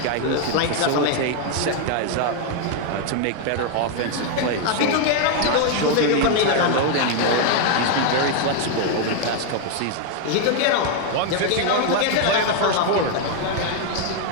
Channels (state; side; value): different; both; correlation 0.00